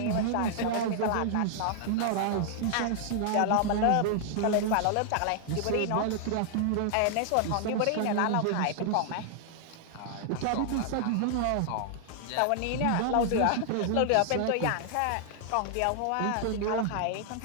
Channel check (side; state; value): both; different; correlation 0.00